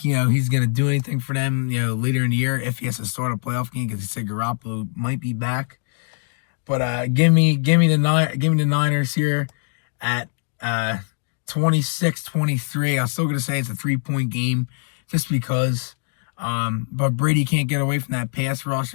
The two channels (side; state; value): right; silent; 64 dB below the other